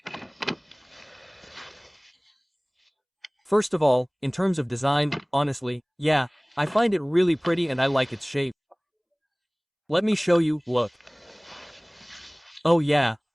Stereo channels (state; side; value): identical; both; correlation 1.00